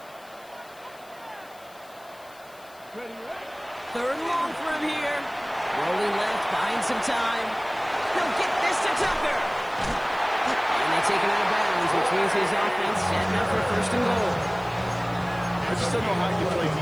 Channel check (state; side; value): noise; left; hiss, 25 dB below the sound